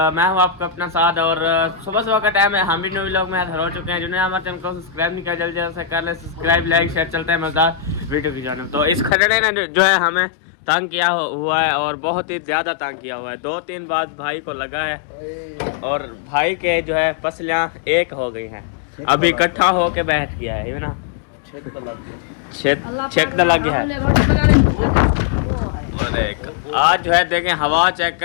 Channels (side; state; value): right; drops out; at 9.2 s